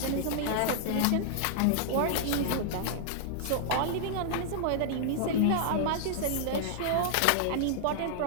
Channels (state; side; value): different; both; correlation -0.01